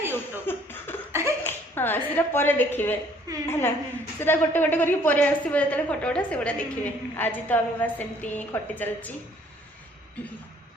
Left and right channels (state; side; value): normal; both; correlation 0.60